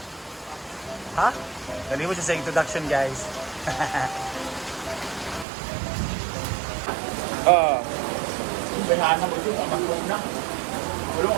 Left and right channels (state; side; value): drops out; left; at 5.5 s